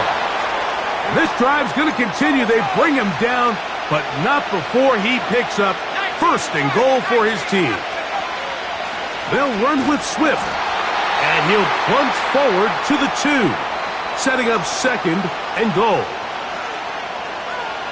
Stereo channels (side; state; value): both; identical; correlation 1.00